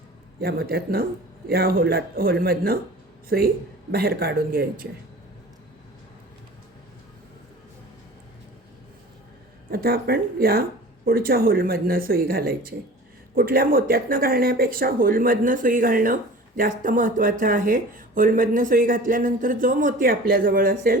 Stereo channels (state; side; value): normal; both; correlation 0.41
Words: या मोत्यातनं, या होलमधनं सुई बाहेर काढून घ्यायची. आता आपण या पुढच्या होलमधनं सुई घालायची. कुठल्या मोत्यातनं घालण्यापेक्षा होलमधनं सुई घालणं जास्त महत्त्वाचं आहे. होलमधनं सुई घातल्यानंतर जो मोती आपल्याजवळ